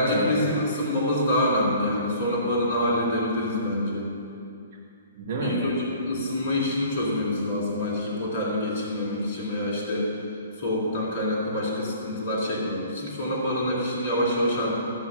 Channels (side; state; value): both; inverted; correlation -0.50